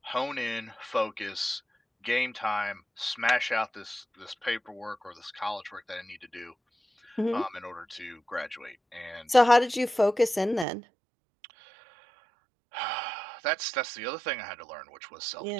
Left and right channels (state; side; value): drops out; left; at 10.7 s